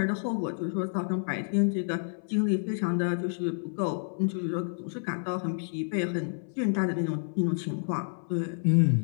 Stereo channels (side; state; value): right; silent; 58 dB below the other